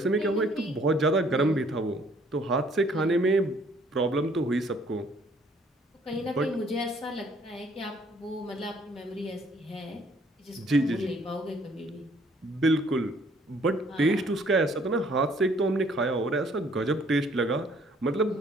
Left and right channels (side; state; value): both; normal; correlation 0.61